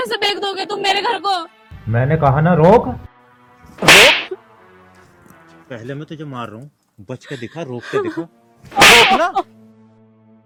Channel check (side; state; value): both; identical; correlation 1.00